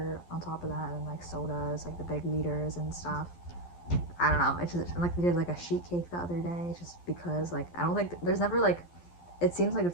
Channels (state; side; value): late; right; 12 ms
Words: on top of that, and sodas, the big liters and stuff. I don't know. It's just we did a sheet cake the other day, just because I don't think there's never it seems like